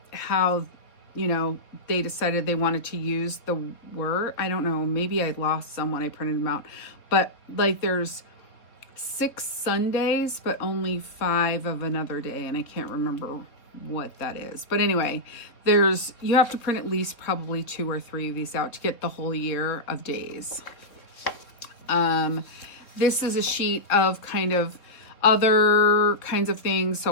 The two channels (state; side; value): late; right; 3.7 ms